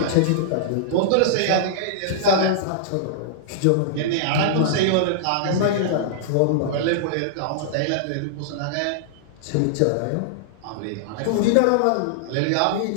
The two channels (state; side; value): different; both; correlation -0.01